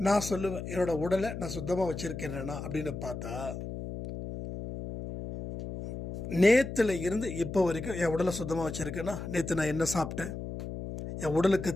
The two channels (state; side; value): noise; left; hum, 7 dB below the sound